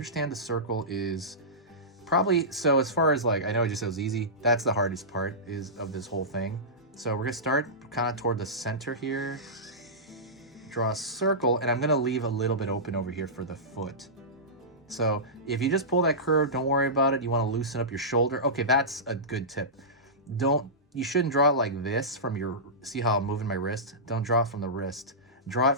the circle is probably, so as far as like, I know I just said it was easy. That's the hardest part of this whole thing. So we're gonna start kind of toward the center here, draw a circle, and I'm gonna leave a little bit open over here for the foot. So if you just pull that curve, don't worry about it. You wanna loosen up your shoulder. Okay, that's a good tip. You shouldn't draw it like this from your, see how I'm moving my wrist? Don't draw it from the wrist. Draw it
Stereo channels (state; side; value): normal; both; correlation -0.17